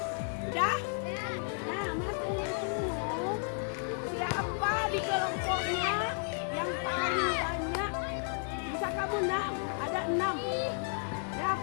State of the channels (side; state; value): right; silent; 56 dB below the other